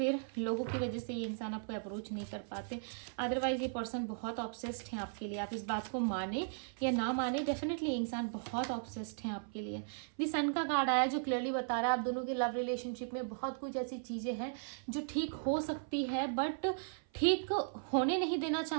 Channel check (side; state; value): left; silent; 53 dB below the other